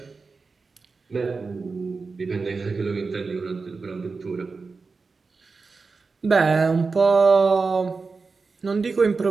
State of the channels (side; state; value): left; quieter; 4.4 dB